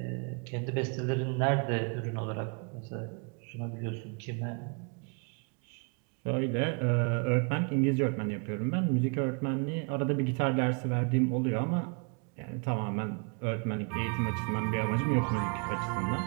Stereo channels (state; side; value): quieter; left; 36.7 dB